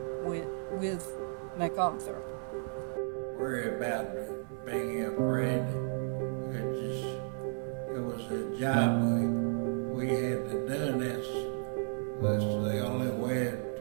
with MacArthur. Worry about being afraid. It was a job we had to do. That's the only way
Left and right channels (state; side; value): silent; left; 55 dB below the other